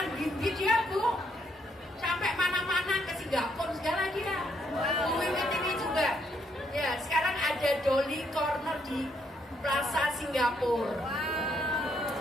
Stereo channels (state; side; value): normal; both; correlation 0.73